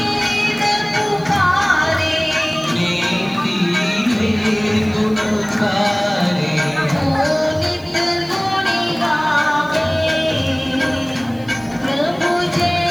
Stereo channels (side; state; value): right; noise; hiss, 27 dB below the sound